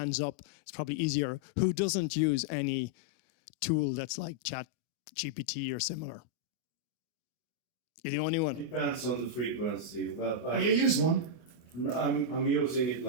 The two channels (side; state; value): right; late; 24 ms